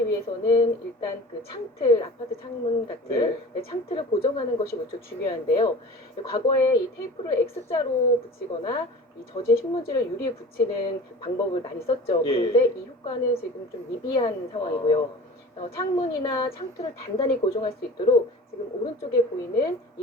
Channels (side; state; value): both; normal; correlation 0.39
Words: 위해서는 일단 그 창틀, 아파트 창문 같은 창틀을 고정하는 것이 무척 중요한데요. 과거에 이 테이프를 X자로 붙이거나 이 젖은 신문지를 유리에 붙이는 방법을 많이 썼죠. 예. 그런데 이 효과는 지금 좀 미비한 상황이고요. 창문이나 창틀을 단단히 고정할 수 있도록 지금 오른쪽에 보이는